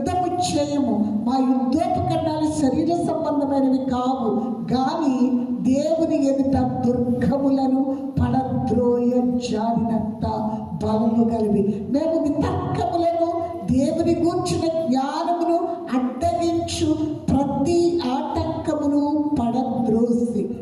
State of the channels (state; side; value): identical; both; correlation 1.00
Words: చేయము. మా యుద్ధోపకరణాలు శరీర సంబంధమైనవి కావు, కానీ దేవుని ఎదుట దుర్గములను పడద్రోయ జారినంత బలము కలిగి మేము వితర్కములను దేవుని గూర్చిన జ్ఞానమును అడ్డగించు ప్రతి ఆటంకమును పడద్రోసి.